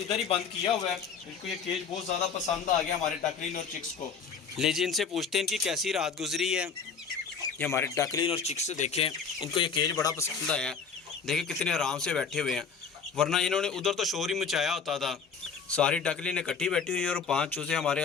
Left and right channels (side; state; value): right; quieter; 6.0 dB